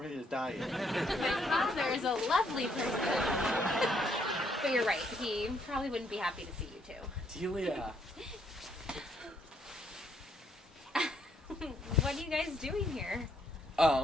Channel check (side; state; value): both; normal; correlation 0.71